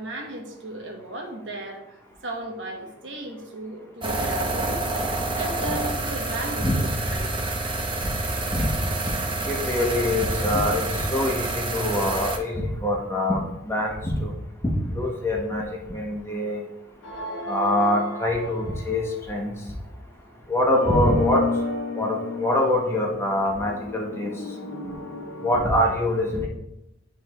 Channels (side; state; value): both; normal; correlation 0.37